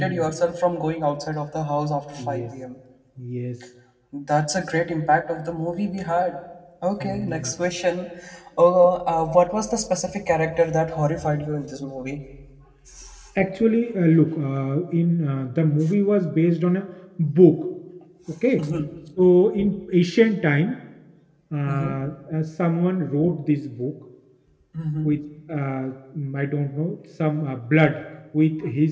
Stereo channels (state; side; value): identical; both; correlation 1.00